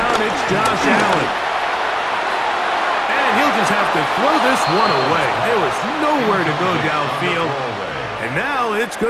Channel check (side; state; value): both; identical; correlation 1.00